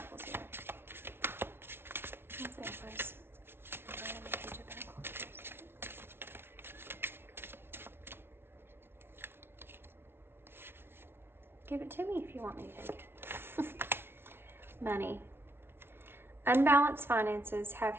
here. What's the Empress? Emperor and the Page of Pentacles. Give it to me if you want me to take it. Money. Unbalanced finances have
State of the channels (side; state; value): left; late; 0.11 ms